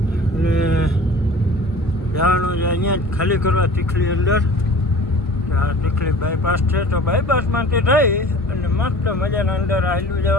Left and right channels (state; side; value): normal; both; correlation 0.44